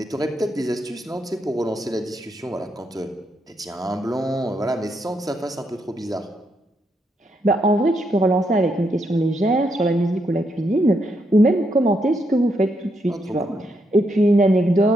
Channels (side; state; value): both; normal; correlation 0.79